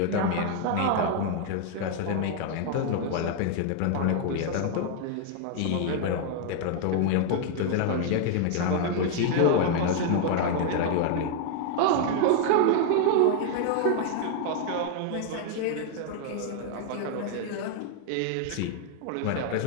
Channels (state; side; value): different; both; correlation 0.00